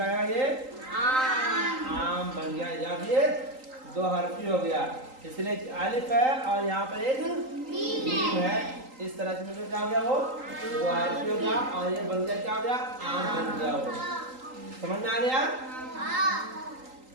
है ये? आम बन गया। अब ये 2 हरफी हो गया, इसलिए अलिफ है और यहाँ पर एक मीम है। इस तरह से मिलकर क्या हो गया? वो 2 हरफी हो गया और ये बन गया क्या हो गया? आम बन गया। वो समझ में आ गया?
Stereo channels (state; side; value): late; left; 3.8 ms